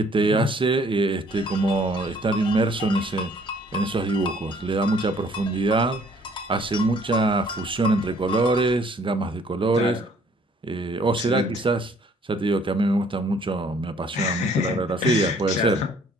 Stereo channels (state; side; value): normal; both; correlation 0.60